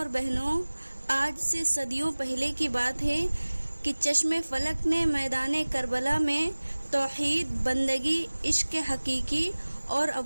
بہنوں، آج سے صدیوں پہلے کی بات ہے کہ چشم فلک نے میدان کربلا میں توحید، بندگی، عشق حقیقی اور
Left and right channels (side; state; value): both; inverted; correlation -1.00